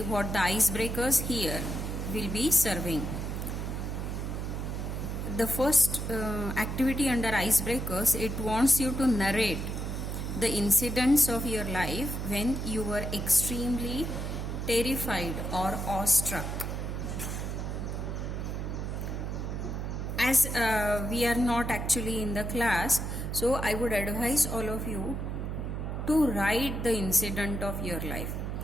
what the icebreakers here will be serving. The first activity under icebreakers, it wants you to narrate the incidents of your life when you were extremely terrified or awestruck. As we are not actually in the class, so I would advise all of you to write the incident of your life.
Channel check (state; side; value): noise; right; hum, 3 dB below the sound